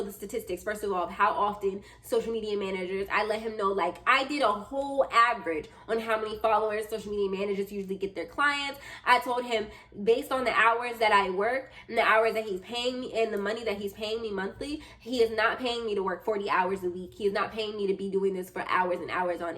the statistics, first of all, of how often social media managers, I let him know, like, I did a whole average on how many followers social media managers usually get their clients. I told him, based on the hours that I work and the hours that he's paying me and the money that he's paying me monthly, he is not paying me to work 40 hours a week. He is not paying me to be doing this for hours and hours on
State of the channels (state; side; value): identical; both; correlation 1.00